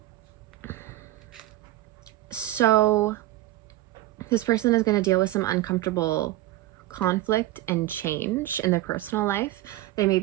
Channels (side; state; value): left; quieter; 16.0 dB